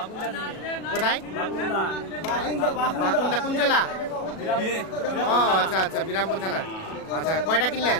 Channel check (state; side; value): late; right; 37 ms